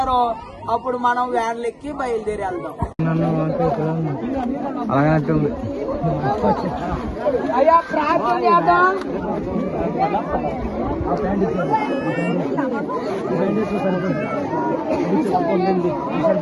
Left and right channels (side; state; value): both; identical; correlation 1.00